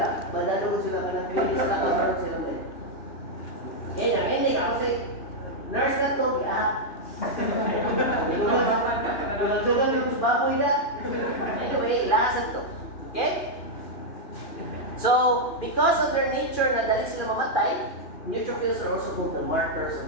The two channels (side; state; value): right; late; 2.9 ms